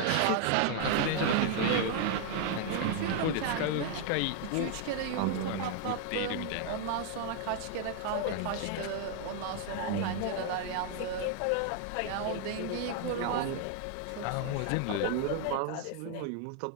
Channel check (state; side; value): different; both; correlation 0.00